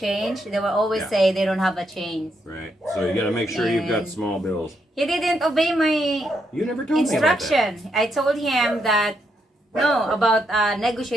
they will always say they don't have a change. Right. So you got to make sure you've got small bills. He didn't obey my You never told me about that. instruction. I told him that about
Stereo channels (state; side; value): normal; both; correlation 0.78